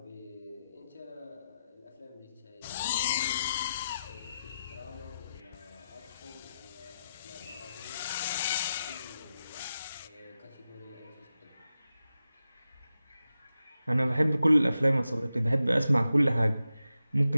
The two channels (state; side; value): inverted; both; correlation -0.90